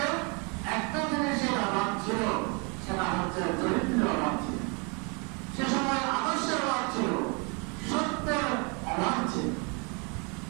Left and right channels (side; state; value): left; quieter; 33.0 dB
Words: একটা জিনিসের অভাব ছিল, সেটা হচ্ছে চরিত্রের অভাব ছিল। সে সময় আদর্শের অভাব ছিল, সত্যের অভাব ছিল।